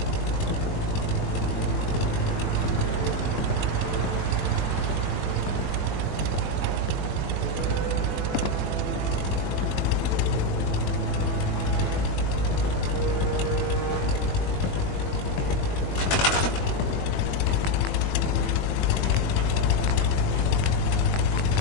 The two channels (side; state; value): right; late; 21 ms